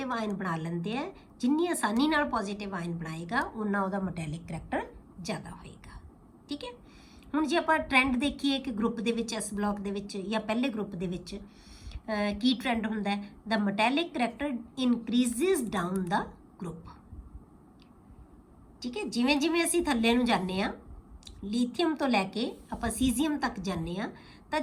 ਆਇਨ ਬਣਾ ਲੈਂਦੇ ਆ, ਜਿੰਨੀ ਆਸਾਨੀ ਨਾਲ ਪੋਜ਼ਿਟਿਵ ਆਇਨ ਬਣਾਏਗਾ ਉਨਾ ਉਹਦਾ ਮੈਟੈਲਿਕ ਕਰੈਕਟਰ ਜ਼ਿਆਦਾ ਹੋਏਗਾ। ਠੀਕ ਹੈ, ਹੁਣ ਜੇ ਆਪਾਂ ਟ੍ਰੈਂਡ ਦੇਖੀਏ ਕਿ ਗਰੁੱਪ ਦੇ ਵਿੱਚ ਐਸ ਬਲੌਕ ਦੇ ਵਿੱਚ ਜਾਂ ਪਹਿਲੇ ਗਰੁੱਪ ਦੇ ਵਿੱਚ ਕੀ ਟ੍ਰੈਂਡ ਹੁੰਦਾ ਹੈ? ਦਾ ਮੈਟੈਲਿਕ ਕਰੈਕਟਰ ਇਨਕਰੀਜ਼ਿਸ ਡਾਊਨ ਦਾ ਗਰੁੱਪ। ਠੀਕ ਹੈ, ਜਿਵੇਂ ਜਿਵੇਂ ਅਸੀਂ ਥੱਲੇ ਨੂੰ ਜਾਂਦੇ ਹਾਂ, ਲੀਥੀਅਮ ਤੋਂ ਲੈ ਕੇ ਆਪਾਂ ਸੀਜ਼ੀਅਮ ਤੱਕ ਜਾਂਦੇ ਹਾਂ, ਤਾਂ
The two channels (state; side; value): identical; both; correlation 1.00